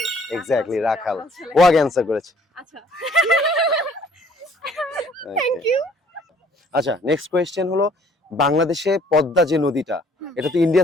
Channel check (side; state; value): both; normal; correlation 0.59